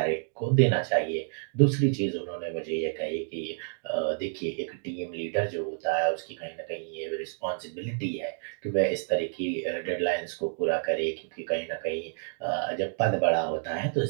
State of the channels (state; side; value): silent; left; 58 dB below the other